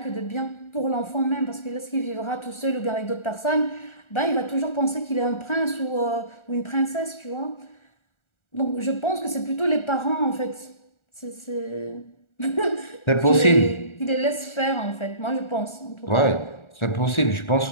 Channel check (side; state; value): right; late; 1.4 ms